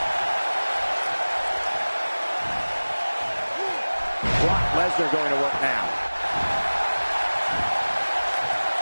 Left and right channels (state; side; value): inverted; both; correlation -1.00